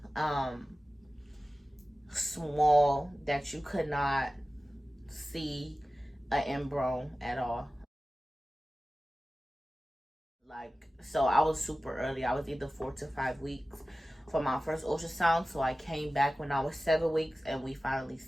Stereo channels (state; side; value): normal; both; correlation 0.96